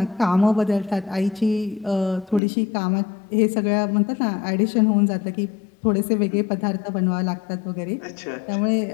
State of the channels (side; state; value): right; drops out; at 2.4 s